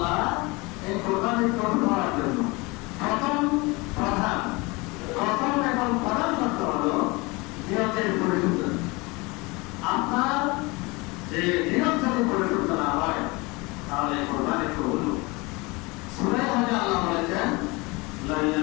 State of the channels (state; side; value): quieter; right; 25.2 dB